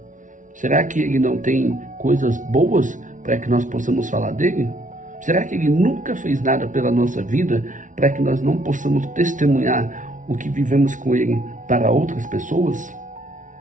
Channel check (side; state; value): left; late; 0.37 ms